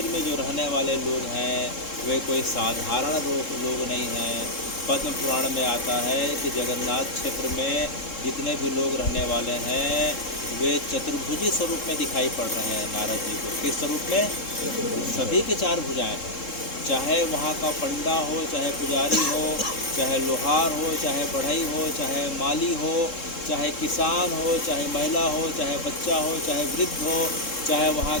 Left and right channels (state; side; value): late; right; 3.7 ms